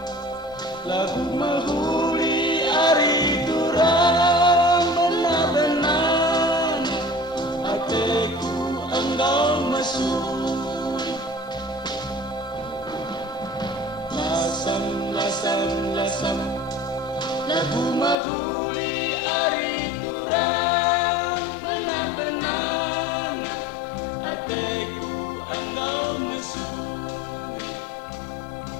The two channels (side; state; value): right; drops out; at 18.2 s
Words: lagu mahuli ari durang benar-benar hatiku engkau mesuri. Lasam lasam lasam lagu mahuli ari durang benar-benar hatiku engkau mesuri.